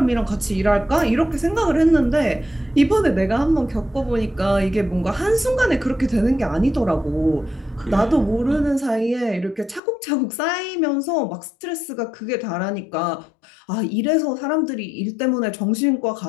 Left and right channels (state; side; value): drops out; right; at 9.8 s